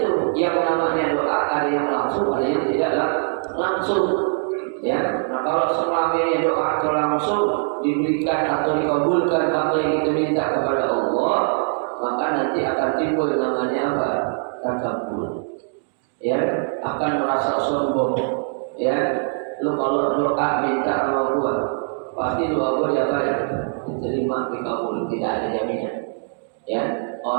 yang namanya doa, ada yang langsung, ada yang tidak langsung. Ya, nah kalau selamanya doa itu langsung diberikan atau dikabulkan apa yang kita minta kepada Allah, maka nanti akan timbul namanya apa? Takabur. Ya, akan merasa sombong. Ya, lu kalau doa minta sama gua, pasti doa gua diapain? Diterima, dikabul, tidak ada jaminan. Ya,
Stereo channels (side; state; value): left; silent; 64 dB below the other